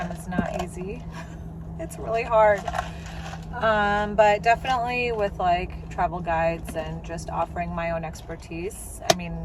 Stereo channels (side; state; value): both; identical; correlation 1.00